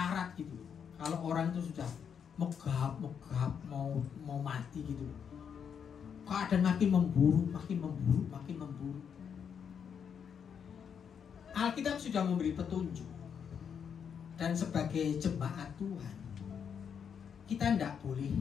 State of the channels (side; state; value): right; quieter; 7.4 dB